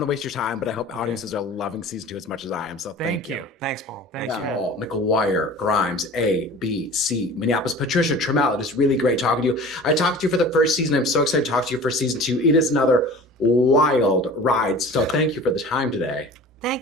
to waste your time, but I hope audiences are loving season 2 as much as I am. So thank you. Thanks, Paul. Thanks, Yeah, man. Paul, McGuire, Grimes, A, B, C, Minneapolis, Patricia, Tramell. It is really great talking to you. I talked to you for the first season. I'm so excited to talk to you for season 2. It is another wild ride. So thank you for the time today.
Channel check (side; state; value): both; normal; correlation 0.41